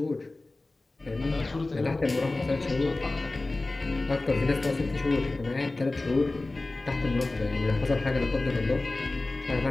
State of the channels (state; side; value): quieter; right; 3.1 dB